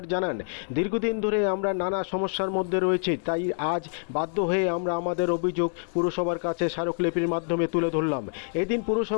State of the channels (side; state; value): right; silent; 60 dB below the other